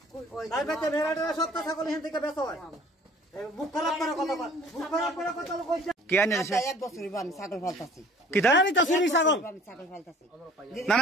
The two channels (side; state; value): both; normal; correlation 0.51